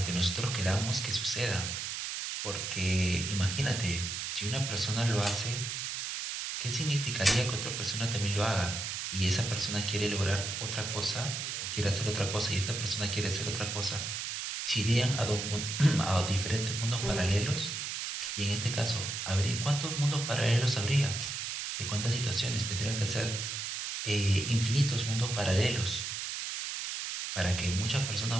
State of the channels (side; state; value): right; noise; hiss, 4 dB below the sound